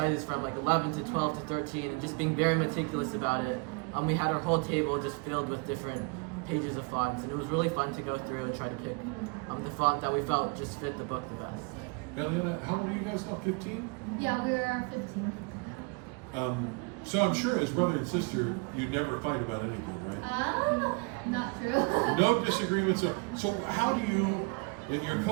from like 11 to 12 to 13, and just being very meticulous about it. We had our whole table just filled with different pages of fonts, and it was really fun to go through and try to pick the font that we felt just fit the book the best. Eliana, how old are you guys now? 15? Yeah, we're 15. So I'm sure as brother and sister, you never fight about anything, right? Not true. No disagreements. So how do you, and you're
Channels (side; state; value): left; quieter; 30.9 dB